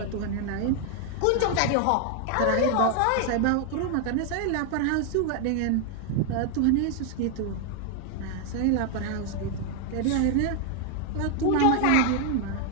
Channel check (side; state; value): both; different; correlation 0.00